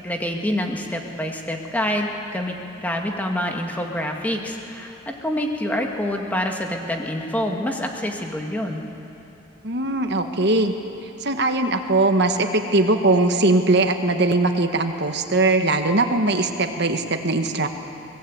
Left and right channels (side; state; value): both; normal; correlation 0.28